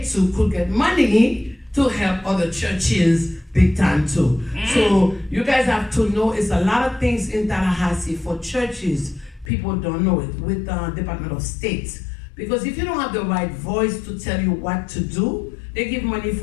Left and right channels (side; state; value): right; drops out; at 9.5 s